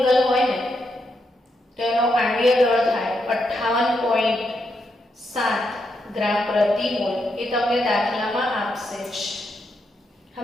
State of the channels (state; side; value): normal; both; correlation 0.81